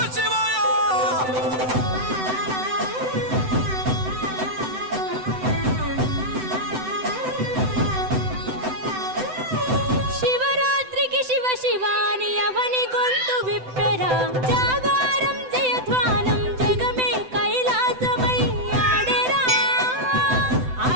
శివాయ శివరాత్రికి శివ శివాని అవని గొంతు విప్పెరా జాగారం జయధ్వానం జగమే కైలాసమై ఆడెరా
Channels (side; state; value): left; late; 7.9 ms